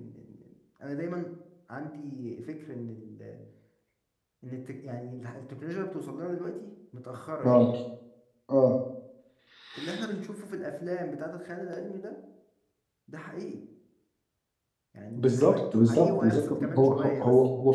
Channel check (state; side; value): identical; both; correlation 1.00